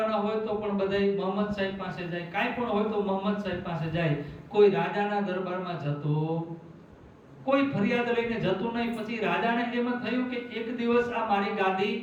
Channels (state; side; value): identical; both; correlation 1.00